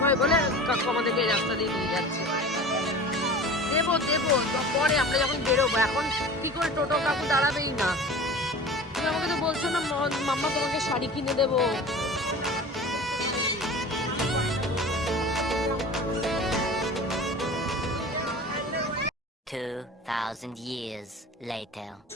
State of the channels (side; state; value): both; normal; correlation 0.37